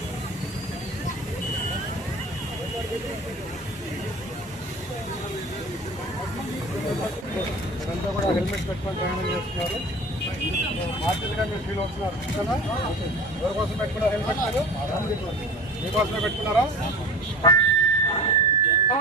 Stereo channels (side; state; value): both; normal; correlation 0.37